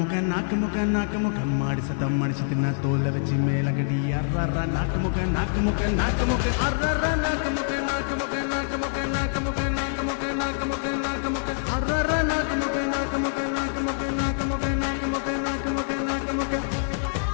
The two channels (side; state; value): right; silent; 61 dB below the other